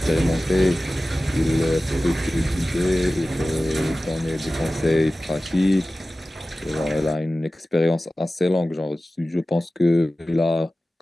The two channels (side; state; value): both; normal; correlation 0.96